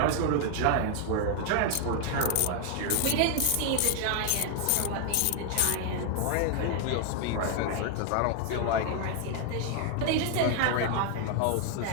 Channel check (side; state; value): both; different; correlation 0.00